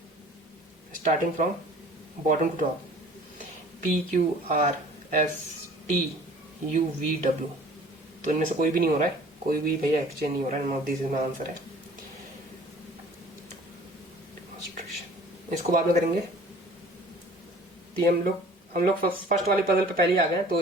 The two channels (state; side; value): normal; both; correlation 0.49